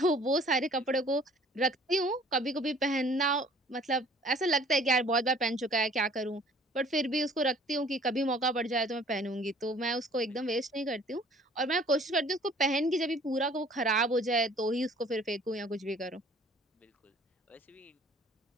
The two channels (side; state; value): both; normal; correlation 0.54